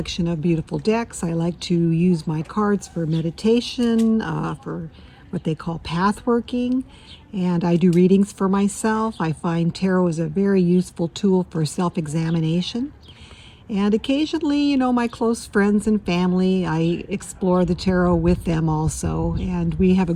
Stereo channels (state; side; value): identical; both; correlation 1.00